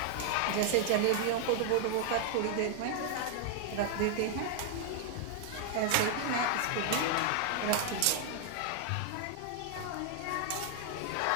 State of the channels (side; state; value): both; different; correlation 0.00